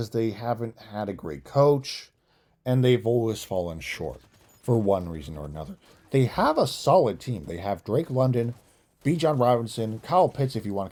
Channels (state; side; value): identical; both; correlation 1.00